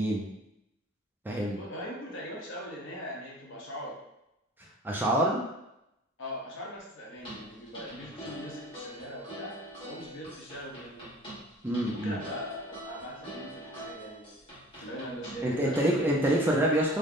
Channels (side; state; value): both; normal; correlation 0.46